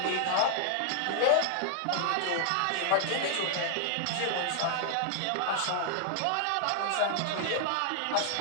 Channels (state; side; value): different; both; correlation 0.00